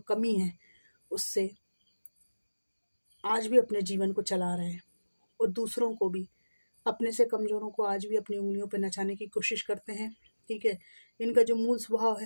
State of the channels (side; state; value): both; inverted; correlation -1.00